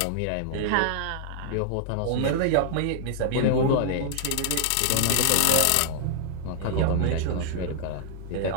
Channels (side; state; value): both; different; correlation -0.01